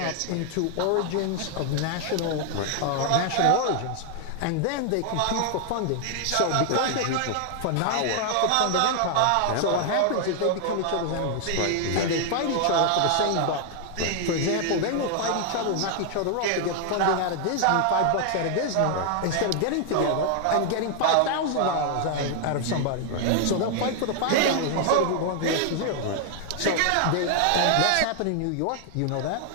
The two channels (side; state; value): both; different; correlation 0.00